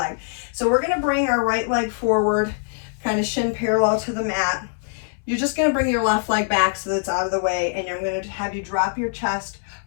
So we're going to bring our right leg forward, kind of shin parallel to the mat. You're just going to bring your left leg back so that it's out of the way, and I'm going to have you drop your chest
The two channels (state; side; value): silent; right; 64 dB below the other